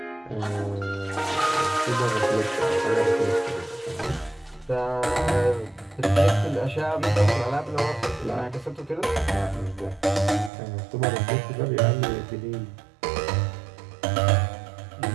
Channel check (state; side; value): drops out; left; at 10.5 s